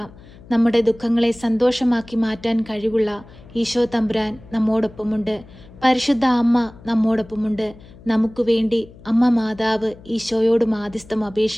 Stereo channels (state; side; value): noise; left; hum, 21 dB below the sound